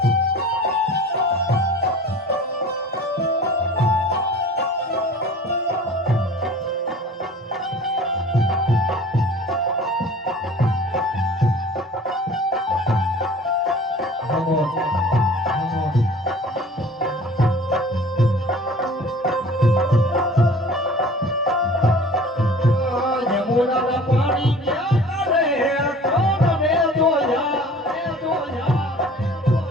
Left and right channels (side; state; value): both; normal; correlation 0.45